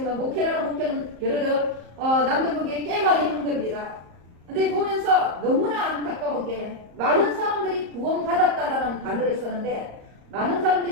목회라는 목회는 여러 남들 보기에 꽤 많이 하는 겁니다. 근데 보면서 너무나 안타까운 게 많은 사람들이 구원받았다라는 단어를 쓰는데 많은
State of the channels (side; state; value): left; late; 34 ms